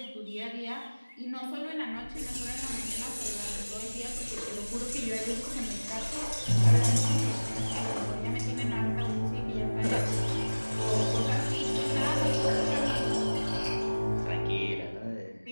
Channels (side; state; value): both; inverted; correlation -1.00